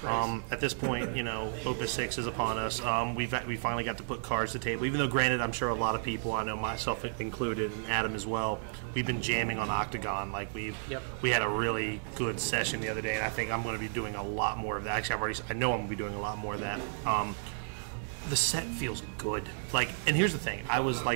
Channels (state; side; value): silent; left; 56 dB below the other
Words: At this point, Opus 6 is upon us. We finally got to put cards to the table. Even though, granted, I'm sure a lot of people, I know myself included, and Adam as well, we've been jamming on Octagon. Like we had a really good session the other day, and I think I'm going to be doing a lot more of that. Actually, I know I'm going to be doing a lot more of that. The set feels good. And here's the thing: I was